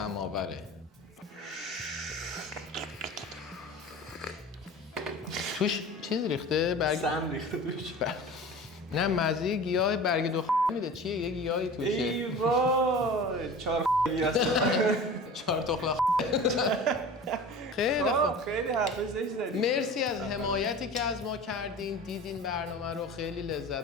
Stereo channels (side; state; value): both; normal; correlation 0.37